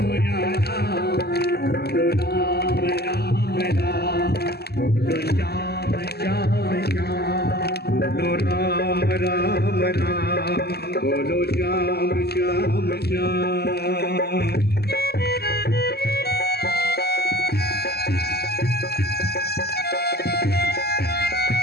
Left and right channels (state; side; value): late; right; 0.46 ms